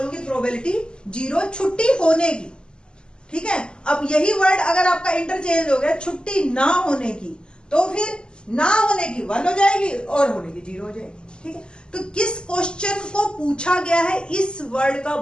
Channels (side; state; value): right; late; 0.048 ms